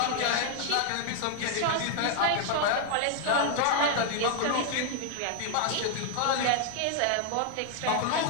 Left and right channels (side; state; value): both; different; correlation 0.00